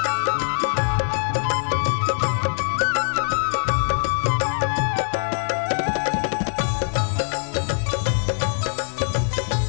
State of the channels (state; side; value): silent; right; digital silence